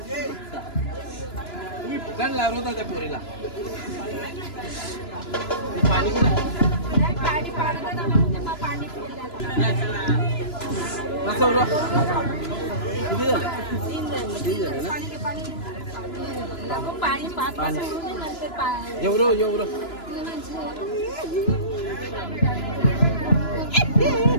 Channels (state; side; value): late; right; 2.9 ms